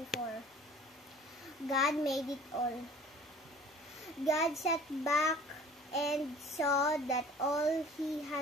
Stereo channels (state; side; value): normal; both; correlation 0.48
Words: God made it all. God sat back and saw that all he